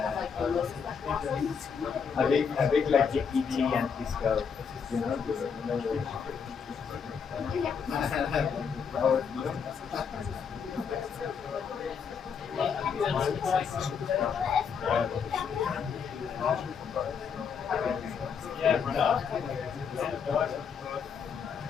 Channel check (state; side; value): quieter; right; 6.5 dB